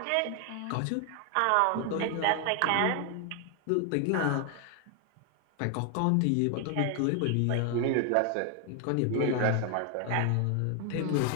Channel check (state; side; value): different; both; correlation 0.00